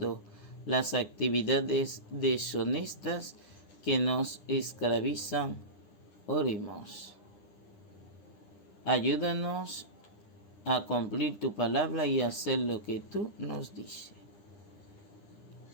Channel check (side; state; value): right; late; 9.9 ms